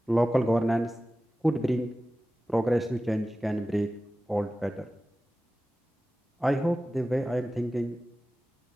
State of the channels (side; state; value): both; normal; correlation 0.96